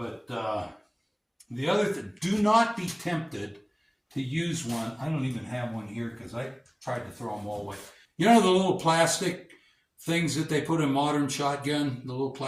the other thing, do not be tempted to use one. I don't even have one here because I tried to throw them all away. You know the little plastic things that they put in modern shotgun, the little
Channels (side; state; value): both; identical; correlation 1.00